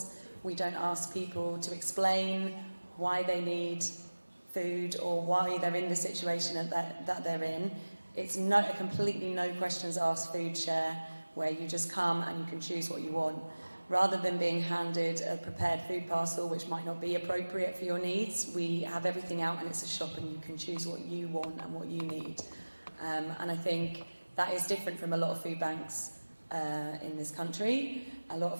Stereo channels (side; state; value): both; inverted; correlation -1.00